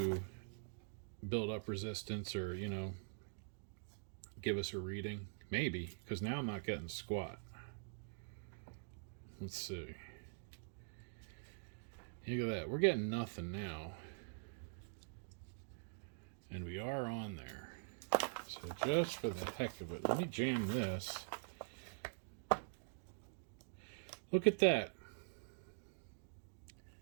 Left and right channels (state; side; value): silent; left; digital silence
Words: build up resistance or, you know, give us a reading. Maybe, because now I'm not getting squat. Let's see. Look at that. We're getting nothing now. And we are on there. So just for the heck of it, let me jam this. Look at that.